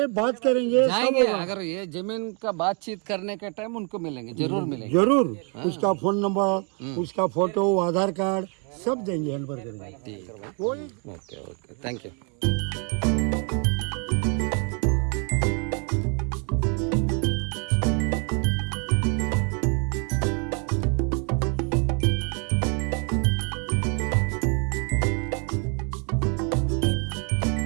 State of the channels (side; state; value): left; quieter; 37.4 dB